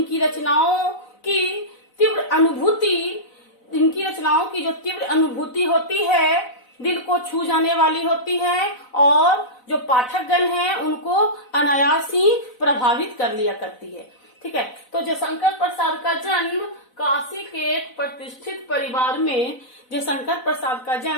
रचनाओं की जो तीव्र अनुभूति होती है दिल को छू जाने वाली होती है और जो पाठकगण हैं उनको अनायास ही प्रभावित कर लिया करती है। ठीक है, तो जयशंकर प्रसाद का जन्म काशी के एक प्रतिष्ठित परिवार में जयशंकर प्रसाद का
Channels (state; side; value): late; right; 4.0 ms